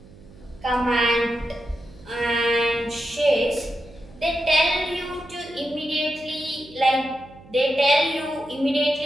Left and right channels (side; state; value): right; noise; hum, 22 dB below the sound